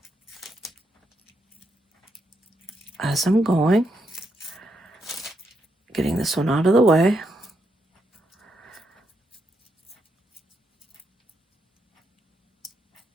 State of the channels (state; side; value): normal; both; correlation 0.80